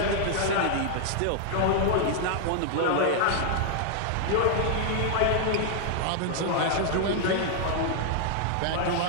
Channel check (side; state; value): both; different; correlation 0.00